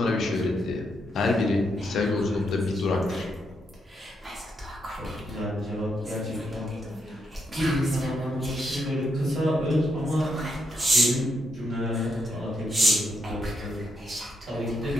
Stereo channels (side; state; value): both; normal; correlation 0.79